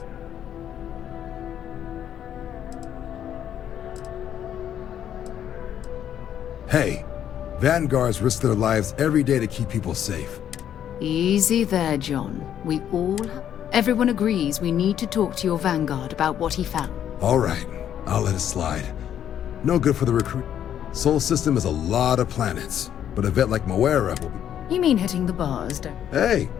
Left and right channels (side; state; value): right; quieter; 10.0 dB